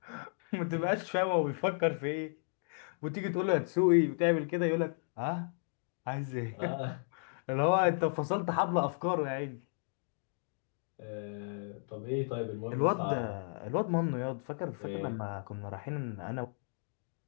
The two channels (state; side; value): silent; right; digital silence